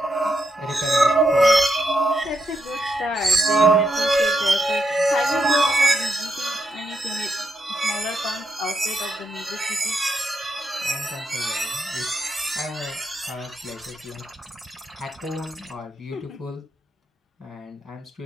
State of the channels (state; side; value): normal; both; correlation 0.82